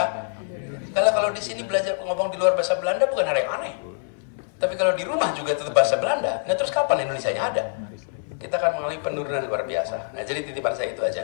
Kalau di sini belajar ngomong di luar bahasa Belanda bukan hal yang aneh. Tapi kalau di rumah juga tetap bahasa Belanda, nah terus kapan Indonesianya ada? Kita akan mengalami penurunan luar biasa. Nah jadi titipan saya itu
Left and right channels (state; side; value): silent; right; 59 dB below the other